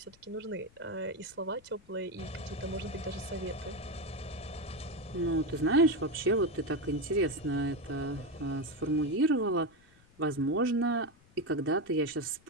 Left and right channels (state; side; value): noise; left; rumble, 28 dB below the sound